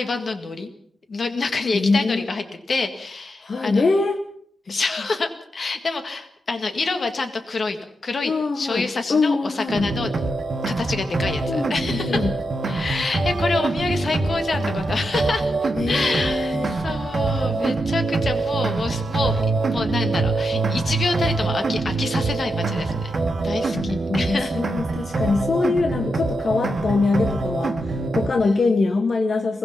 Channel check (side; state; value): both; normal; correlation 0.86